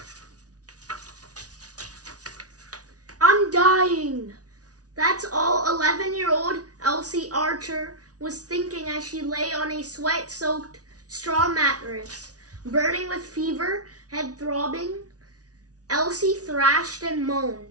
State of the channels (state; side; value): late; left; 0.68 ms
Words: I'm dying. That's all 11-year-old Elsie Archer was thinking as she lay on a sweat-soaked straw mattress, burning with fever, head throbbing. Elsie thrashed and moaned.